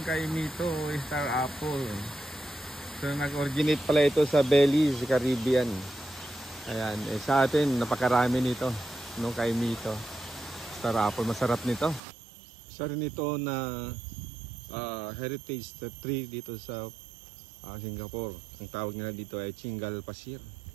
kay Mito Star Apple. So nag-originate pala ito sa Belize, Caribbean. Ayan, sa atin napakarami nito no, kay Mito Star Apple. Masarap nito. Isa rin ito na heritage tree dito sa Singapore. Ang tawag nila dito ay Chingal Pasir.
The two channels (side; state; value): left; drops out; at 12.0 s